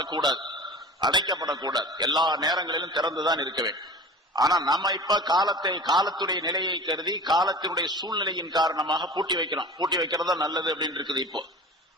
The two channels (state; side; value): normal; both; correlation 0.37